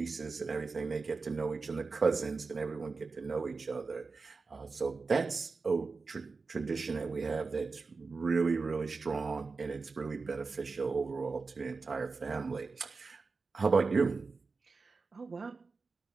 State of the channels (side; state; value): left; quieter; 4.3 dB